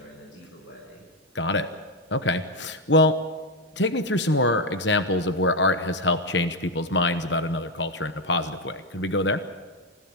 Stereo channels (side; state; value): both; normal; correlation 0.05